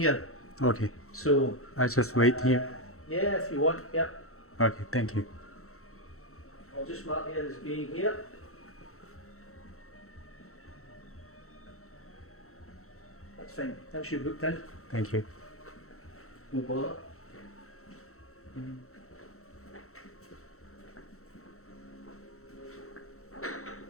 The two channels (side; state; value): right; late; 0.63 ms